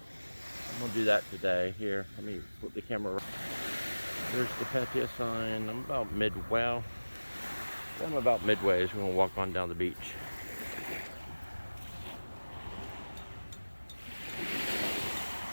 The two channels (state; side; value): inverted; both; correlation -1.00